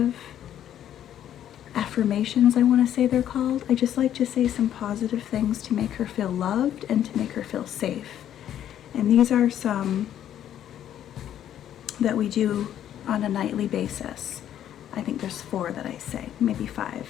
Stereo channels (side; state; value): right; quieter; 10.8 dB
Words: affirmations, I want to say they're called. I just like to say some positive things to make her feel loved and to make her feel safe. And these are some that we do on a nightly basis. I think there's 4 that I say, maybe 5.